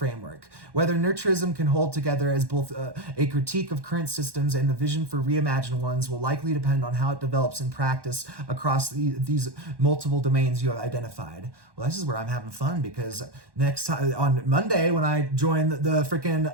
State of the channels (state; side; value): late; left; 1.1 ms